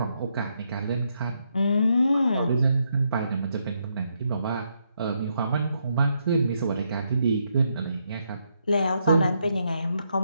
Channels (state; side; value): inverted; both; correlation -0.78